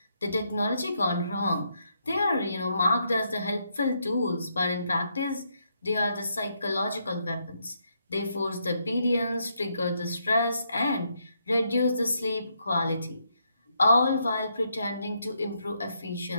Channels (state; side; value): inverted; both; correlation -0.77